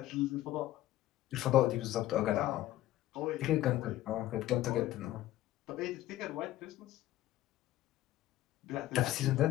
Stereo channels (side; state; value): right; quieter; 14.7 dB